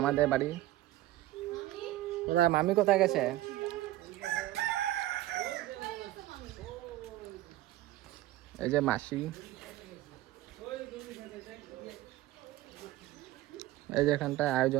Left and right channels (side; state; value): left; quieter; 15.8 dB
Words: বাড়ি। কোথায় মামি, কোথায় গেছে? এই যে মাসি, এই যে এখানটায়